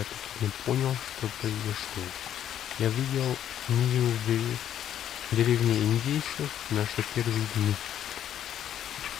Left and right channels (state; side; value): quieter; right; 10.5 dB